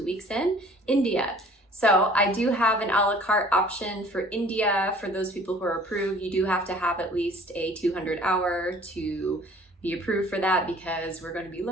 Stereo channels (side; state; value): both; normal; correlation 0.51